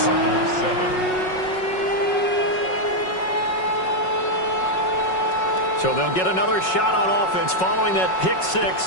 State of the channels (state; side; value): late; right; 5.4 ms